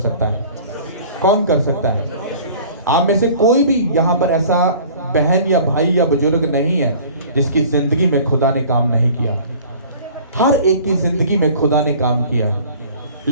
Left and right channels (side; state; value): both; inverted; correlation -0.47